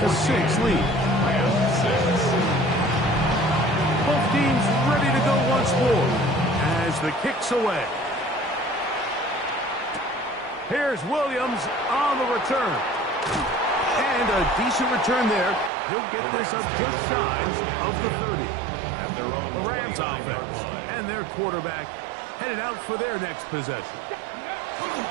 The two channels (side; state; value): left; drops out; at 15.7 s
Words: lead. Both teams ready to go once more as the kick's away. Here's Williams on the return. And a decent return there. He'll get this up just shy of the 30. The Rams offense and their quarterback headed out for their next possession.